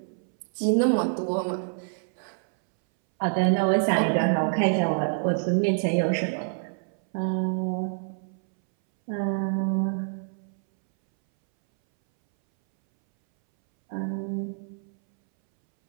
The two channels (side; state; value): left; silent; 61 dB below the other